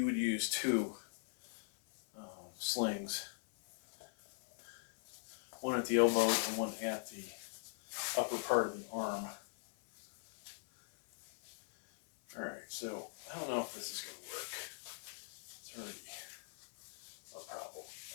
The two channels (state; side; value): silent; right; 51 dB below the other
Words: would use two slings. One at the elbow and one at the upper part of the arm. Alright, so I don't know if this is going to work. It's already a problem.